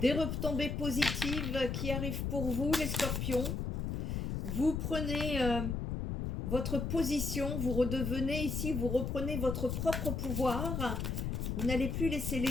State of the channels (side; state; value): left; noise; rumble, 2 dB below the sound